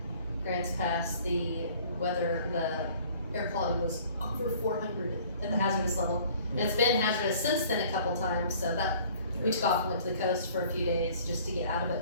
Grants Pass, the weather, the air quality was over 400 at the hazardous level. And it's been hazardous since then a couple times, so that we took off and went to the coast for a few days just to get out of it.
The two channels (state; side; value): inverted; both; correlation -0.53